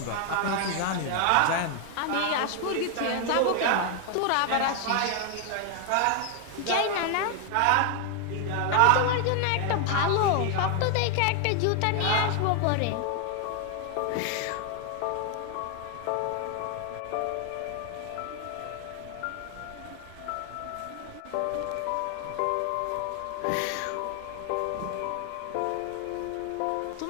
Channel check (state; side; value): different; both; correlation 0.00